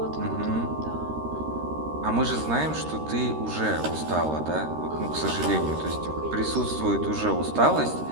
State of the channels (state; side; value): late; left; 13 ms